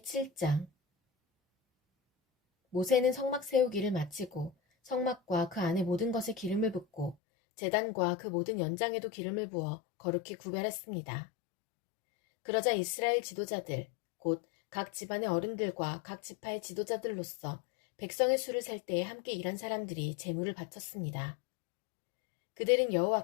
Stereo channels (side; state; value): right; drops out; at 7.2 s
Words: 7장. 모세는 성막 세우기를 마치고 성막과 그 안에 모든 것에 기름을 붓고 제단과 그 모든 연장에도 기름을 부어 거룩히 구별했습니다. 그러자 이스라엘 지도자들, 곧 각 집안의 어른들과 각 지파의 지도자들로서 백성의 수를 셀 때에 함께 일한 사람들이 제물을 바쳤습니다. 그들은